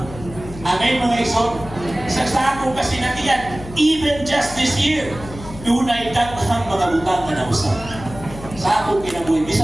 Amen mga igsoon? Sa ako kasi nakiyan, even just this year, dunay daghang mga butang na nausap. Sa ako kinabuhi,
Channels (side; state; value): left; noise; hum, 13 dB below the sound